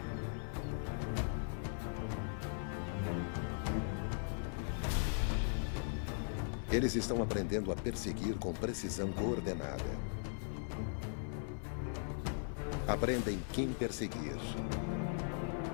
Eles estão aprendendo a perseguir com precisão coordenada. Aprendem quem perseguir.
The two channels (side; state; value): right; silent; 52 dB below the other